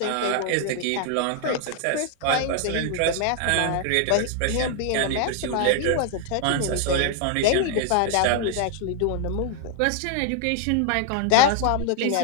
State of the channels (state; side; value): different; both; correlation 0.00